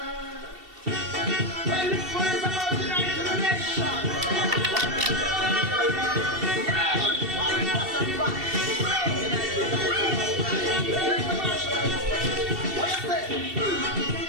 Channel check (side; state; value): left; late; 2.7 ms